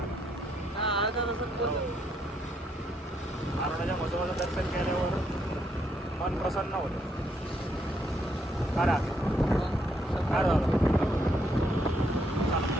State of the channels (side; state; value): both; normal; correlation 0.74